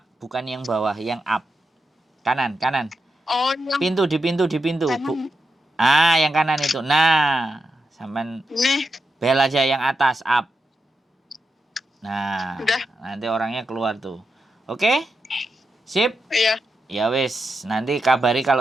bukan yang bawah, yang up. Kanan. Oh, yang Pintu. kanan. Yang kanan itu. Nah, sampai Nih, bel aja yang atas up. Nah, udah. nanti orangnya keluar tuh. Oke? Sip? Iya. Ya wis, nanti kabari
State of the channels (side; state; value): both; normal; correlation 0.87